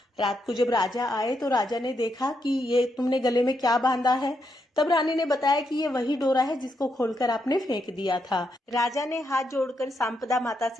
रात को जब राजा आए तो राजा ने देखा कि ये तुमने गले में क्या बांधा है। तब रानी ने बताया कि ये वही डोरा है जिसको खोलकर आपने फेंक दिया था। राजा ने हाथ जोड़कर सांपदा माता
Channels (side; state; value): both; normal; correlation 0.80